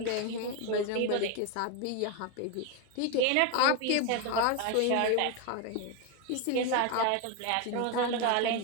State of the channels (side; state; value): both; different; correlation 0.02